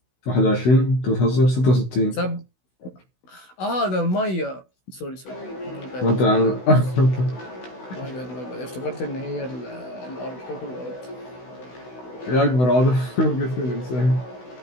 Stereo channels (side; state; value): right; late; 16 ms